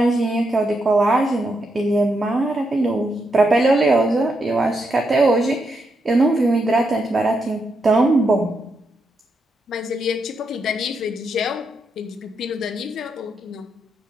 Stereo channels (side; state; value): both; normal; correlation 0.82